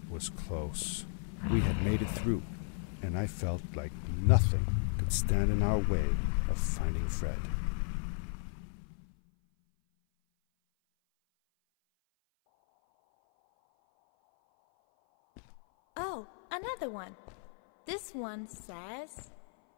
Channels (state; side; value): silent; right; 55 dB below the other